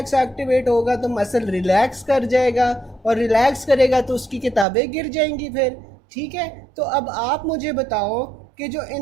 एक्टिवेट होगा तो मसल रिलैक्स कर जाएगा, और रिलैक्स करेगा तो उसकी किताबें गिर जाएंगी फिर। ठीक है, तो अब आप मुझे बताओ कि जो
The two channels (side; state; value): left; drops out; at 4.7 s